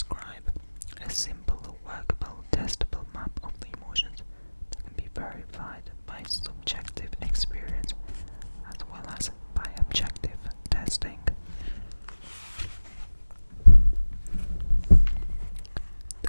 a simple, workable, testable map of the emotions that can be verified by subjective experience as well as by objective testing.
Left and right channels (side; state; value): both; inverted; correlation -1.00